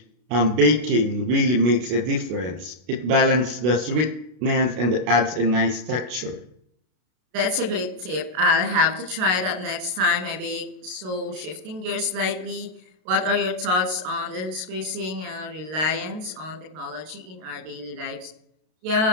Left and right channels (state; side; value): late; left; 33 ms